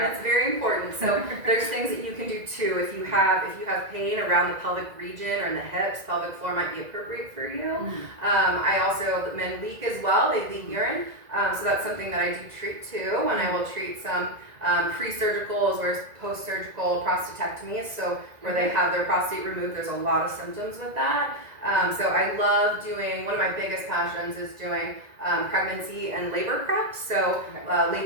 it's very important. So there's things that you can do too. If you have pain around the pelvic region or in the hips, pelvic floor might be appropriate for you. I also, men leak as well. They leak urine, so that's something that I do treat too. And I will treat some pre-surgical as well as post-surgical prostatectomies. So where they have their prostate removed, there's a lot of symptoms with that. So I love doing, one of my biggest passions is doing pregnancy and labor prep. So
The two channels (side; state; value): left; late; 2.0 ms